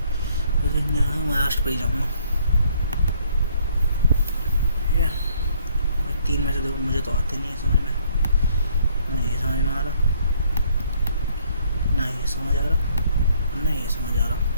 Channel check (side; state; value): both; inverted; correlation -0.65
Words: महाराष्ट्र पे ही जाऊँगा। ठीक है, 3 में से देखो, मुझे तो आते नहीं है समझ में, नहीं ये समझ में आ रहा, ना ये समझ आ रहा, ना ये समझ आ रहा।